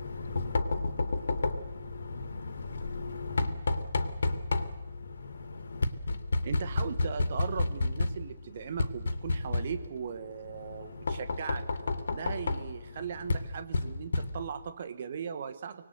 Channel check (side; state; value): both; inverted; correlation -0.86